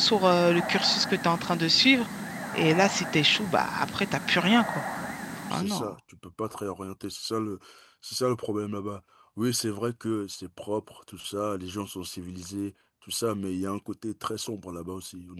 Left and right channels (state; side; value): identical; both; correlation 1.00